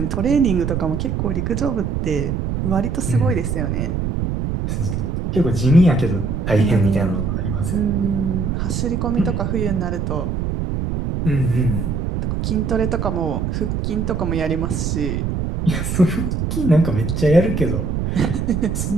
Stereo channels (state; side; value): noise; right; rumble, 1 dB below the sound